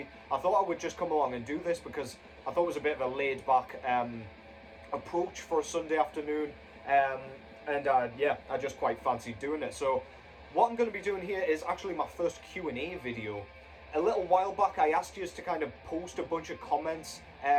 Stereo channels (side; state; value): both; identical; correlation 1.00